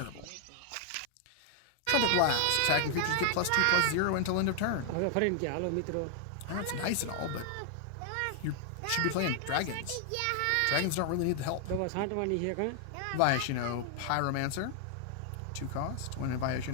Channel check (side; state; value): both; different; correlation 0.00